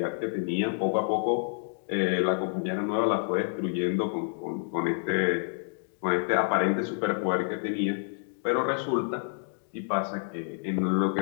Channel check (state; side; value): silent; right; digital silence